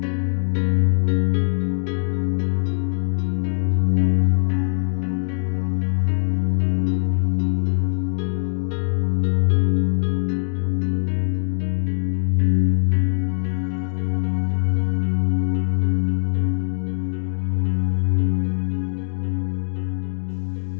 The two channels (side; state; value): right; silent; digital silence